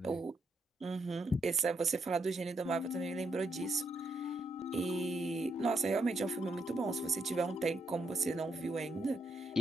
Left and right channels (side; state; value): both; normal; correlation 0.78